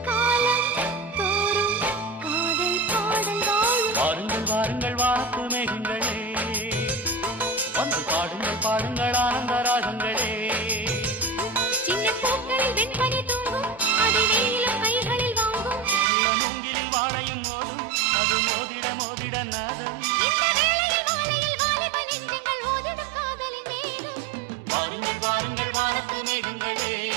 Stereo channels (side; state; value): left; drops out; at 16.1 s